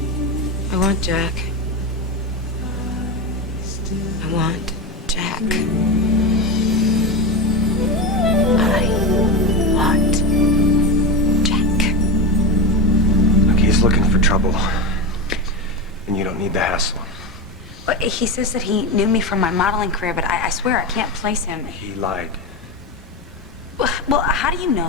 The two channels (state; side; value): normal; both; correlation 0.17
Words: I want Jack. I want Jack. I want Jack. Look, he's looking for trouble. And you don't need the hassle. Well, he says that he knew me from my modeling career, but I swear I can't place him. He lied. Well, how do you